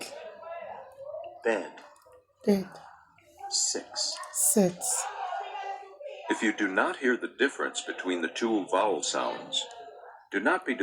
bed, bid, 6. sits. If you do not hear the difference between the 2 vowel sounds, do not be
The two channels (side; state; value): both; identical; correlation 1.00